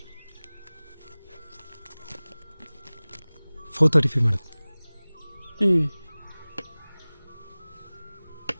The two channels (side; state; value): both; inverted; correlation -1.00